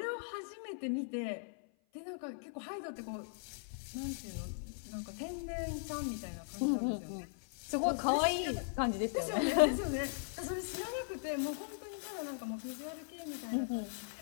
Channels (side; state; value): right; silent; 52 dB below the other